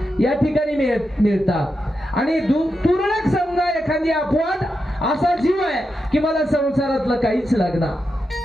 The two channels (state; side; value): normal; both; correlation 0.87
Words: या ठिकाणी मिळतात. आणि तुरळक समजा एखादी अपवाद असा जीव आहे की मला संसारातलं काहीच लागणार,